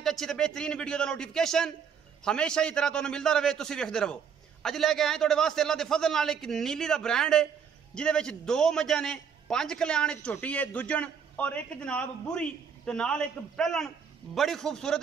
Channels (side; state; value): left; quieter; 7.1 dB